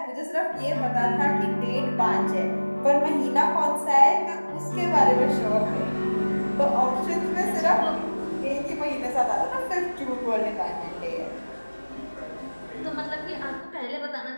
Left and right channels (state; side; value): inverted; both; correlation -1.00